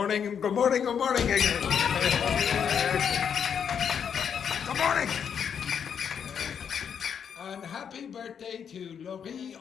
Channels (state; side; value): quieter; right; 7.6 dB